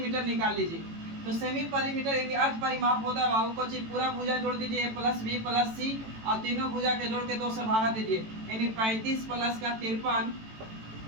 निकाल लीजिए। तो सेमी परिमीटर यानी अर्ध परिमाप होता है बाबू को चीज पूरा भुजा जोड़ दीजिए a प्लस बी प्लस सी और तीनों भुजा के जोड़ के 2 से भागा दीजिए, यानी 35 प्लस का 53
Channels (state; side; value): late; left; 18 ms